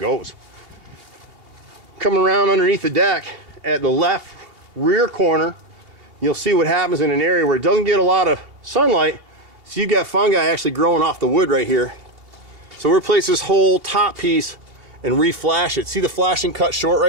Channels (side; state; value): left; late; 2.8 ms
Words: Coming around underneath the deck at the left rear corner, you'll see what happens in an area where it doesn't get a lot of sunlight. So you got fungi actually growing off the wood right here. So we'll replace this whole top piece and re-flash it. See the flashing cut short